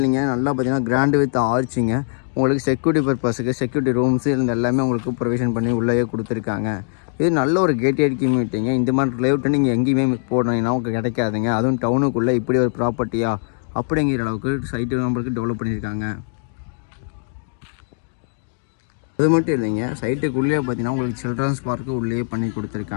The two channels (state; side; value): silent; right; digital silence